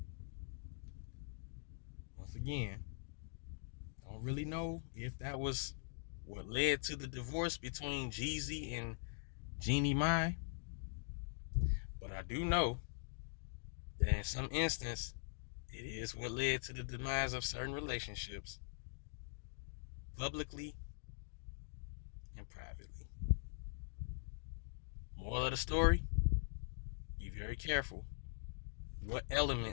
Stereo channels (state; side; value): silent; right; digital silence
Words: once again, don't really know if that was what led to the divorce between Jeezy and Jeannie Mai. But I do know that in some instance, it is what led to the demise of certain relationships, publicly and privately. Moral of the story, be very careful what